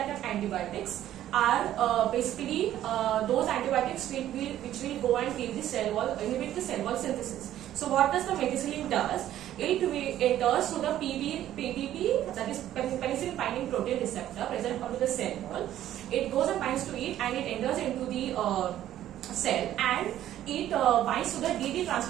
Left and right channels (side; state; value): left; quieter; 12.4 dB